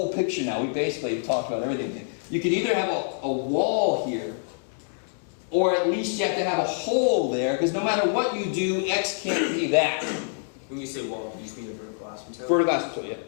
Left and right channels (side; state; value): right; silent; digital silence